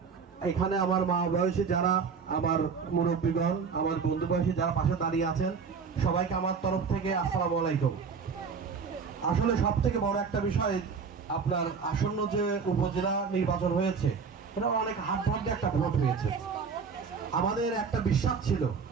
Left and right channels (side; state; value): left; quieter; 5.7 dB